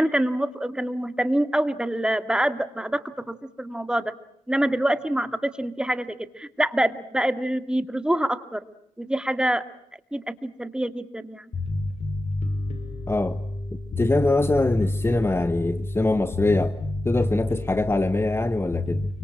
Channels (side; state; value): both; normal; correlation 0.93